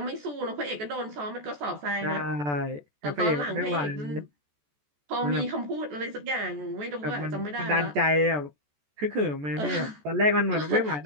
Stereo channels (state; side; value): late; left; 14 ms